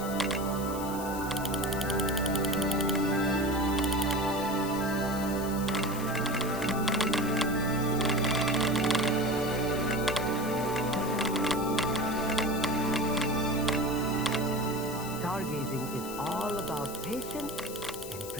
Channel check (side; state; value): left; noise; hiss, 12 dB below the sound